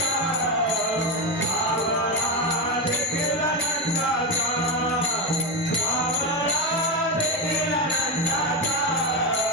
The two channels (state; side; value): normal; both; correlation 0.12